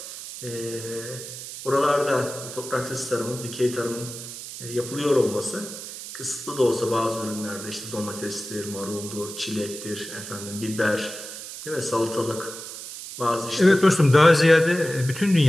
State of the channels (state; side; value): noise; right; hiss, 11 dB below the sound